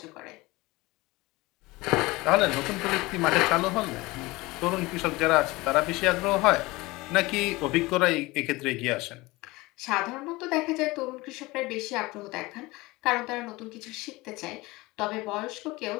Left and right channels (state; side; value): quieter; right; 21.6 dB